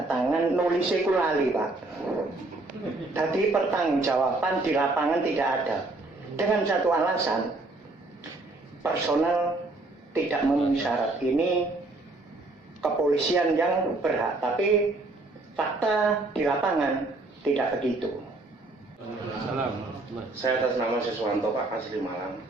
tangan, nulisnya ku lali Pak. Tadi pertanggungjawaban di lapangan tidak ada. Dengan satu alasan, personal tidak memenuhi syarat. Ini kepolisian yang berhak, tapi fakta di lapangan tidak begitu. Saya atas nama Siswanto Pak, asli Malang.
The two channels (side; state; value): left; quieter; 3.0 dB